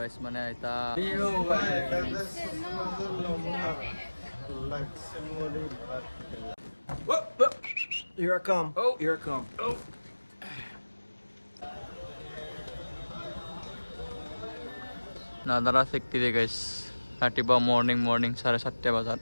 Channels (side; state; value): both; inverted; correlation -1.00